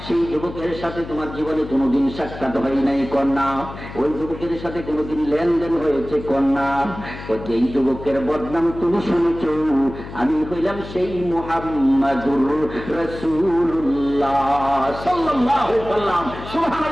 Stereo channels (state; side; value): noise; left; hum, 12 dB below the sound